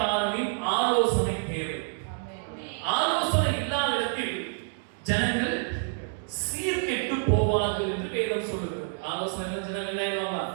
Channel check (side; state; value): left; silent; digital silence